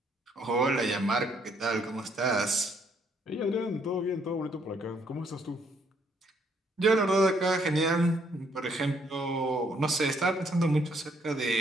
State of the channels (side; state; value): both; normal; correlation 0.69